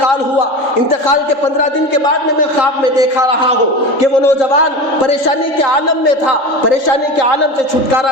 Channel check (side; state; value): right; late; 3.8 ms